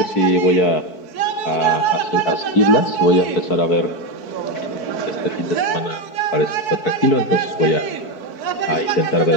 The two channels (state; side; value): late; right; 4.6 ms